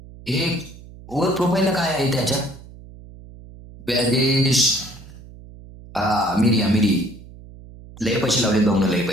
हे वर प्रोफाईलला काय आहे त्याच्या. बॅगेश. हा मिरी. लय पैसे लावले भाऊन, लय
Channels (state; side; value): noise; right; hum, 18 dB below the sound